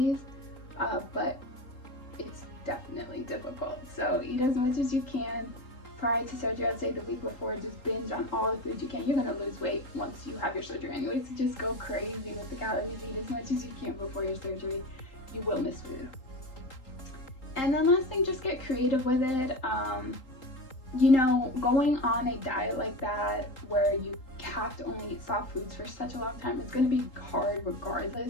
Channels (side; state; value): right; late; 3.8 ms